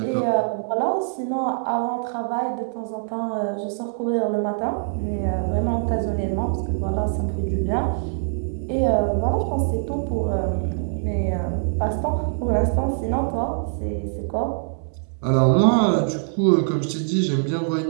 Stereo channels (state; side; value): silent; left; digital silence